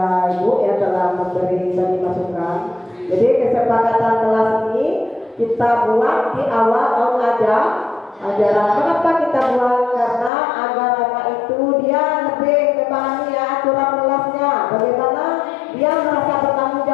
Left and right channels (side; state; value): right; drops out; at 10.3 s